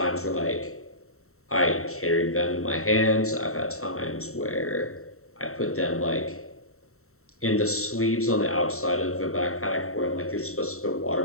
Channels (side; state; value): right; late; 0.63 ms